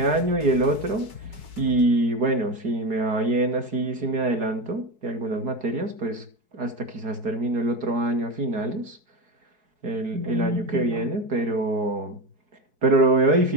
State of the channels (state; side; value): late; left; 4.7 ms